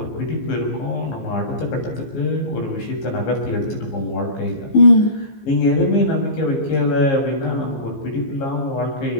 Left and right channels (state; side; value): late; right; 15 ms